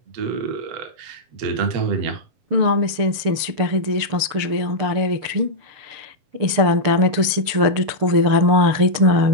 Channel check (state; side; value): late; left; 6.8 ms